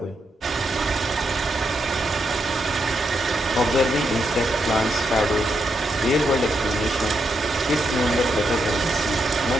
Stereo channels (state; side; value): normal; both; correlation 0.82